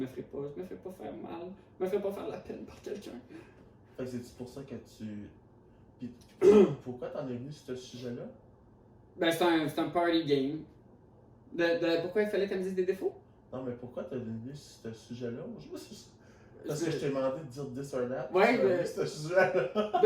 ferai pas faire mal, je me ferai pas faire la peine par quelqu'un. Fait que c'est pour ça que tu. Puis, pourquoi t'en es venu sur ce sujet-là? Ben, c'est un party game. Pourquoi il fallait qu'elle me dise des défauts? Non, mais pourquoi t'es venu sur ce sujet-là? Parce que je t'ai demandé de dire this or that. Ouais, mais. Ce sujet-là.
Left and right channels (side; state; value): both; identical; correlation 1.00